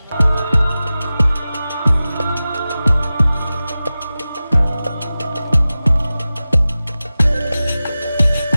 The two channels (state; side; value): inverted; both; correlation -0.96